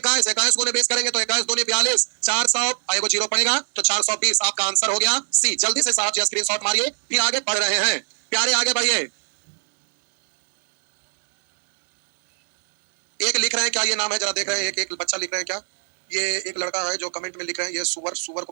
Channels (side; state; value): left; silent; 65 dB below the other